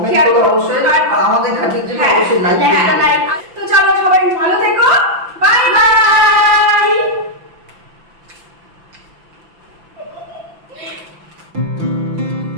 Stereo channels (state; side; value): late; left; 5.9 ms